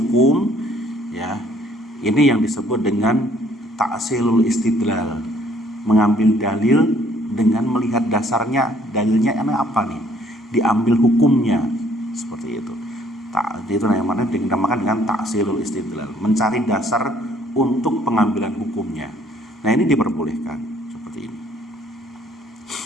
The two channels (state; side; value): normal; both; correlation 0.62